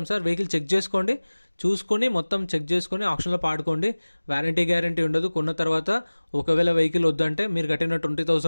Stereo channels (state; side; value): inverted; both; correlation -1.00